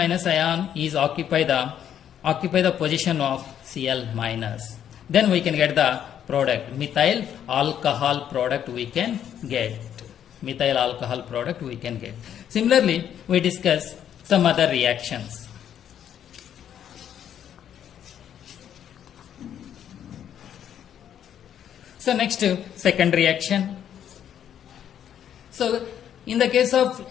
ion is occupy the position of Cl minus. Then we can get the product, methyl alcohol product we can get. Methyl alcohol product we can get. Similarly, we discuss some other reactions. So next, second reaction. So in the case of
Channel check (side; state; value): right; quieter; 9.7 dB